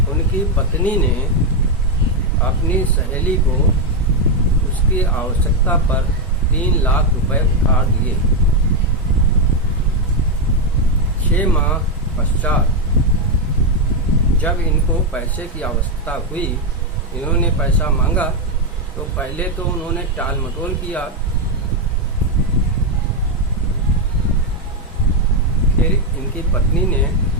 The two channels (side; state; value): both; normal; correlation 0.04